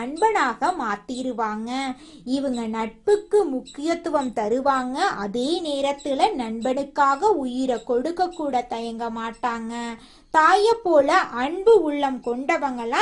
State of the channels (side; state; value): both; identical; correlation 1.00